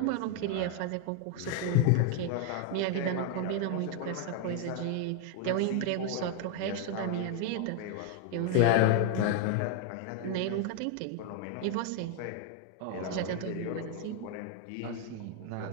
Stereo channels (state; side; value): different; both; correlation 0.00